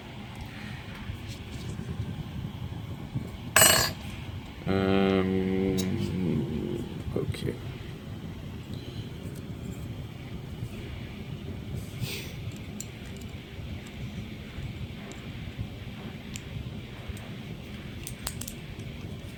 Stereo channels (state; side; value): identical; both; correlation 1.00